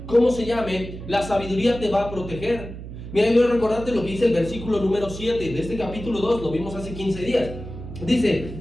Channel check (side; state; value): right; noise; hum, 11 dB below the sound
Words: cómo se llame, la sabiduría te va a proteger. Mira, yo voy a recordarte lo que dice el versículo número 7 de este capítulo 2, lo vimos hace 15 días.